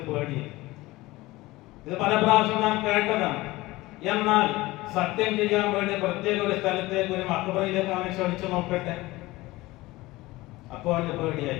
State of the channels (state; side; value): quieter; right; 19.5 dB